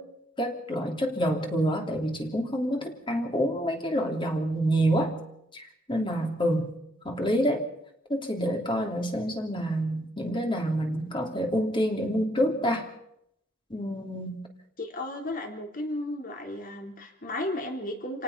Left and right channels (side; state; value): both; normal; correlation 0.71